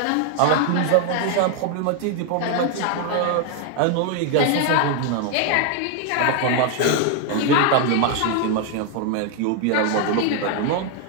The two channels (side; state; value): both; different; correlation 0.01